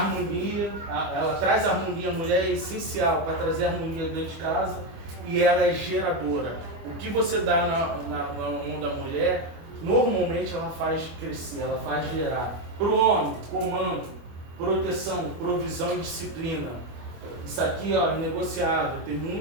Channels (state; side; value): late; left; 24 ms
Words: ela traz harmonia, a mulher é essencial para trazer harmonia dentro de casa e ela é geradora. O que você dá na mão da mulher, normalmente ela faz crescer, ela faz gerar. Para o homem, comando, proteção, provisão e disciplina. Isso aqui, ó, é negociável. Tem